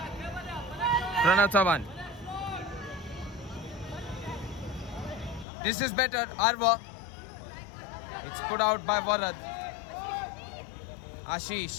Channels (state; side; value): drops out; right; at 5.5 s